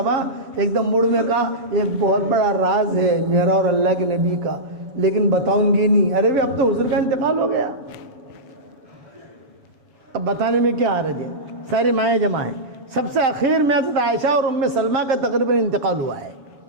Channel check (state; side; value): late; left; 7.2 ms